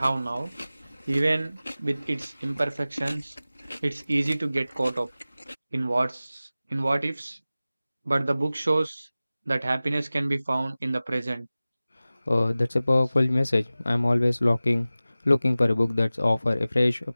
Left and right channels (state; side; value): inverted; both; correlation -0.97